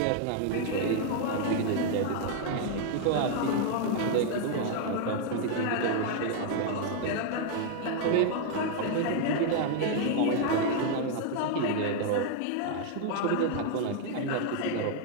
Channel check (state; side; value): different; both; correlation 0.00